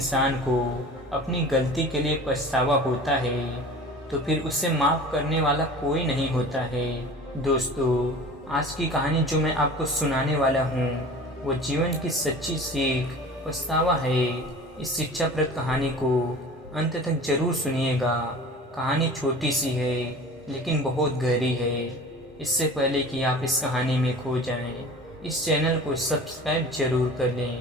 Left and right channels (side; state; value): both; normal; correlation 0.40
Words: को अपनी गलती के लिए पछतावा होता है तो फिर उसे माफ़ करने वाला कोई नहीं होता है। दोस्तों, आज की कहानी जो मैं आपको सुनाने वाला हूँ वो जीवन की सच्ची सीख पछतावा है। इस शिक्षाप्रद कहानी को अंत तक जरूर सुनिएगा। कहानी छोटी सी है लेकिन बहुत गहरी है। इससे पहले कि आप इस कहानी में खो जाएं, इस चैनल को सब्सक्राइब जरूर कर